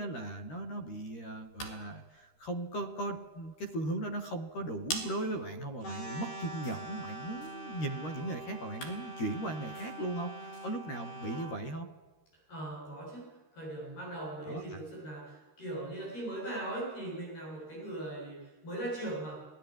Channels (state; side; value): late; right; 13 ms